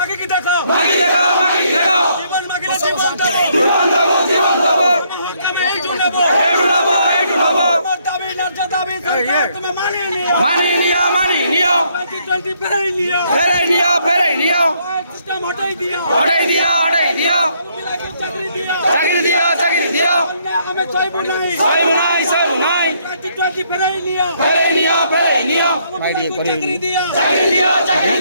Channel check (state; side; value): inverted; both; correlation -0.70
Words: কি দেখো মাগে দেখো মাগে দেখো জীবন মাগিলে জীবন দেব জীবন দেব জীবন দেব হকামে এই জুনেব এই জুনেব এই জুনেব আমার দাবি ন্যায্য দাবি সরকার তুমি মানিয়ে নিও 2020 ফেরাই নিও সিস্টেম হটাই দিও চাকরি দিও আমি চাইবো নাই 2020 ফেরাই নিও চাকরি